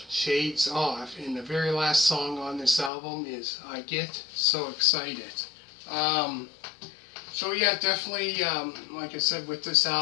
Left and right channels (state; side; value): drops out; right; at 2.9 s